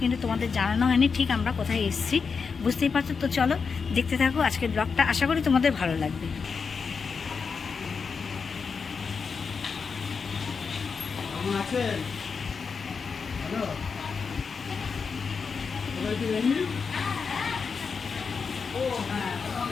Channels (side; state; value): right; quieter; 5.4 dB